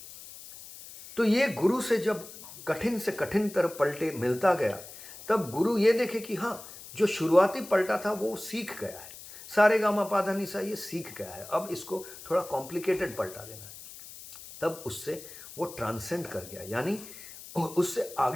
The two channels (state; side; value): noise; left; hiss, 15 dB below the sound